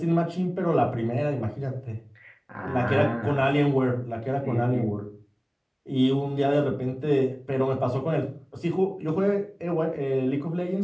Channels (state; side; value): identical; both; correlation 1.00